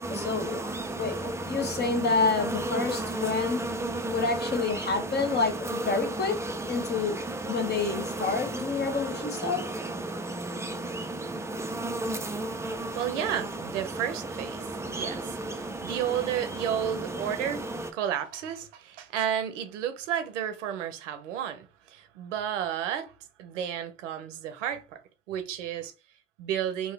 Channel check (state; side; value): normal; both; correlation 0.21